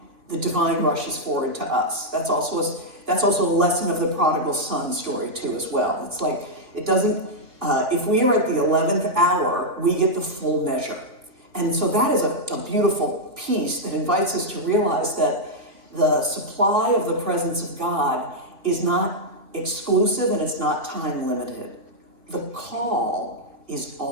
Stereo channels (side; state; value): left; late; 3.4 ms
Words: rushes forward to us. That's also a lesson of the prodigal son story too as well. It's like, it doesn't, if we are at the 11th hour, we get the full measure. And so that is a beautiful piece that invites us to realize that the supply of the presence of God is not exclusive and it's not time limited. The call is